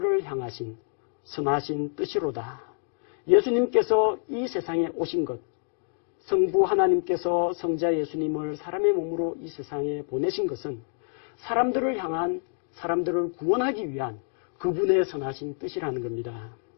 향하신 선하신 뜻이로다. 예수님께서 이 세상에 오신 것, 성부 하나님께서 성자 예수님을 사람의 몸으로 이 세상에 보내신 것은 사람들을 향한, 사람들을 구원하기 위한 그분의 선하신 뜻이라는 겁니다.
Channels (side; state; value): right; silent; 60 dB below the other